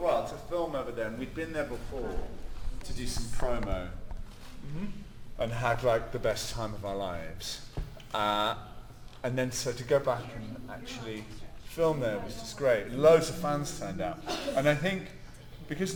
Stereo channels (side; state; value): both; identical; correlation 1.00